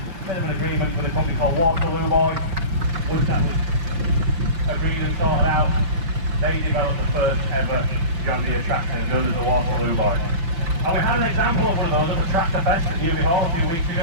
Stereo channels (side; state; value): left; late; 5.8 ms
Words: bit of an agreement with a company called Waterloo Boys. Once that was agreed and sorted out, they developed the first ever John Deere tractor known as the Waterloo Boys. And we had an example of one of those at the Tractor Fest at Newby Hall a few weeks